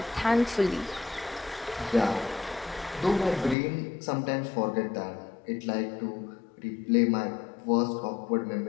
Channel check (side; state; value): right; drops out; at 3.6 s